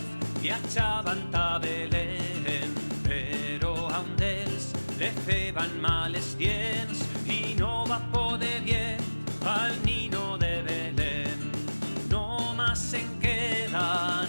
viatjaven a Belén, però a un d'ells li feien mal els dients i no va poder dir al nino de Belén. Nomás en queda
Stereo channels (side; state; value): both; inverted; correlation -1.00